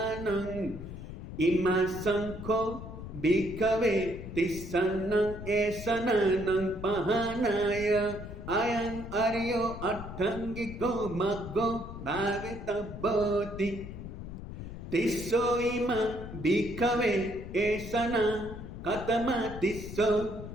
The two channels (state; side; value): noise; left; rumble, 10 dB below the sound